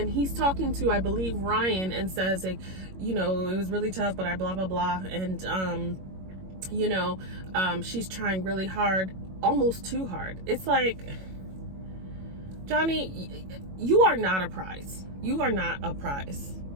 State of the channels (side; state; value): left; late; 21 ms